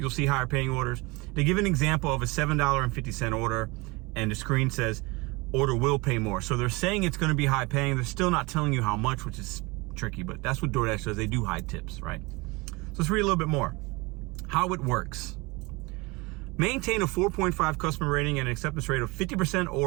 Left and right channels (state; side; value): quieter; left; 25.0 dB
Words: see higher paying orders. They give an example of a $7.50 order, and the screen says order will pay more. So they're saying it's going to be high paying. They're still not telling you how much, which is tricky, but that's what DoorDash does. They do high tips, right? So let's read a little bit more. How it works. Maintain a 4.5 customer rating and an acceptance rate of 50%